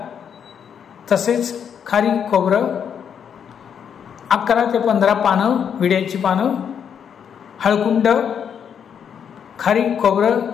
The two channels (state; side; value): quieter; right; 7.9 dB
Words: तसेच खारीक खोबरं, 11 ते 15 पानं विड्याची पानं, हळकुंड, खारीक खोबरं,